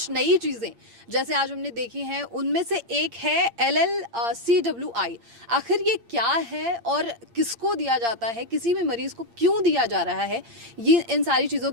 नई चीज़ें जैसे आज हमने देखी हैं उनमें से एक है LLCWI। आखिर ये क्या है और किसको दिया जाता है, किसी भी मरीज को क्यों दिया जा रहा है, ये इन सारी चीज़ों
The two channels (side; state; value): left; late; 8.7 ms